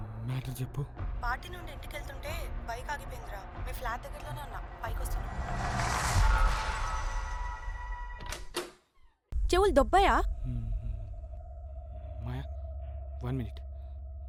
మ్యాటర్ చెప్పు. పార్టీ నుండి ఇంటికి వెళ్తుంటే బైక్ ఆగిపోయిందిరా. మీ ఫ్లాట్ దగ్గరలోనే ఉన్నా, పైకి వస్తున్నా. చెవులు దొబ్బాయా? మాయా, 1 మినిట్.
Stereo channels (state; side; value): identical; both; correlation 1.00